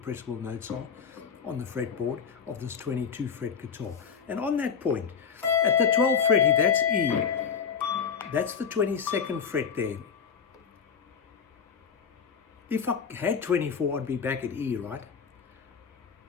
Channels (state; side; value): quieter; right; 6.6 dB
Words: notes are on the fretboard of this 22 fret guitar. And on that point, at the 12th fret, if that's E, that's the 22nd fret there. If I had 24, I'd be back at E, right?